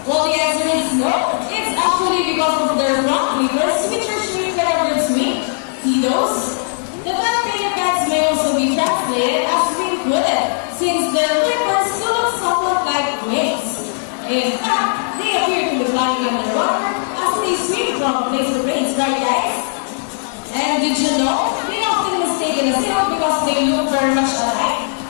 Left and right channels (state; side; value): silent; right; 67 dB below the other